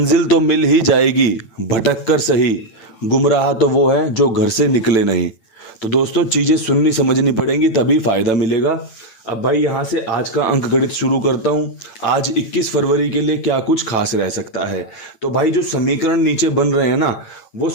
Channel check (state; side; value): late; right; 9.0 ms